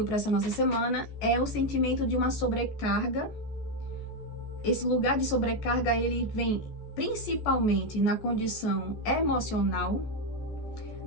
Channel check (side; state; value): right; late; 14 ms